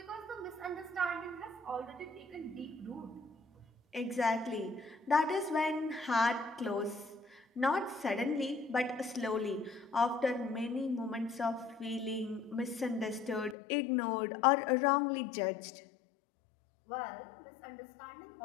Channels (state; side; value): drops out; right; at 13.6 s